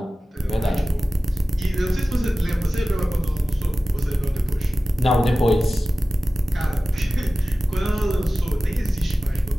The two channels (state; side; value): normal; both; correlation 0.96